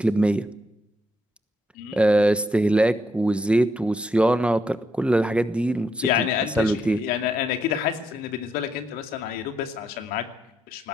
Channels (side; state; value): both; normal; correlation 0.78